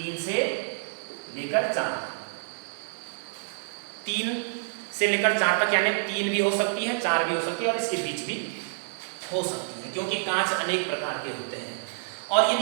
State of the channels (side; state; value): left; silent; digital silence